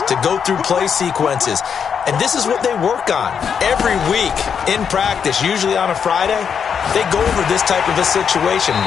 to go through play sequences. And this is what they work on every week in practice, usually on a Friday. They go over this type of a situation,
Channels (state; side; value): quieter; right; 7.1 dB